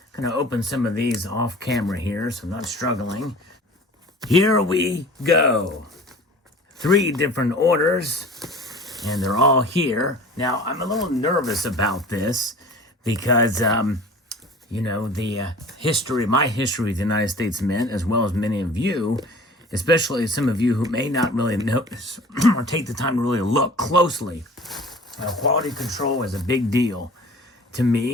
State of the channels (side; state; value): both; normal; correlation 0.43